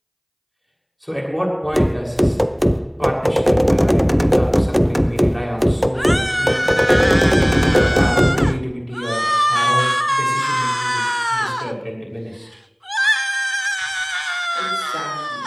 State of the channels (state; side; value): identical; both; correlation 1.00